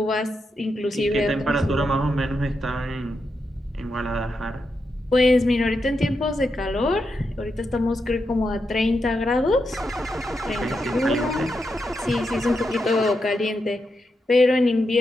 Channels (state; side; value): normal; both; correlation 0.85